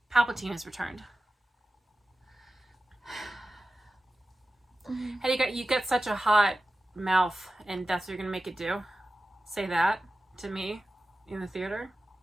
Palpatine has returned. Hey, you got such a hot mouth, and that's what you're gonna make it do? Say that to me in the theater?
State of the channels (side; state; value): both; normal; correlation 0.94